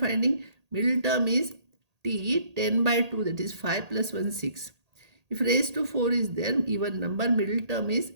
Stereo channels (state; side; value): late; left; 1.8 ms